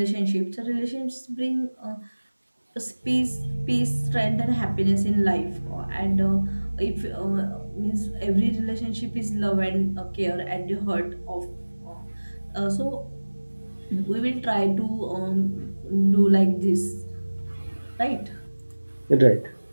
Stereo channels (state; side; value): inverted; both; correlation -1.00